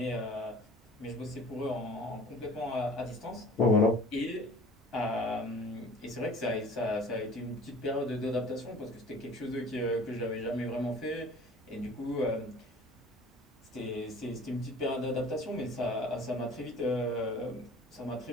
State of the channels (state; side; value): normal; both; correlation 0.46